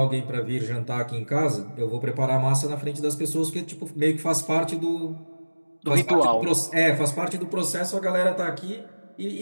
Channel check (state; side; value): inverted; both; correlation -1.00